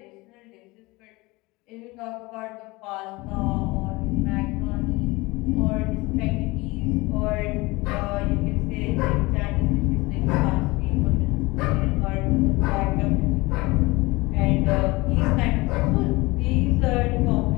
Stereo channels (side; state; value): right; quieter; 22.7 dB